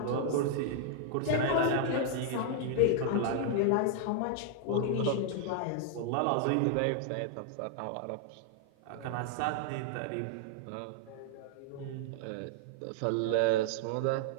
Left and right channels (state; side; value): different; both; correlation -0.01